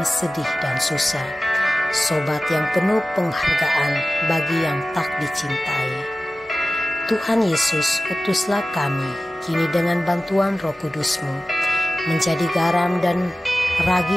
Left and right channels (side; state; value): both; normal; correlation 0.95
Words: sedih dan susah, sobat yang penuh penghargaan bagi yang tak dicintai. Tuhan Yesus, utuslah kami kini dengan bantuan Roh Kudus-Mu menjadi garam dan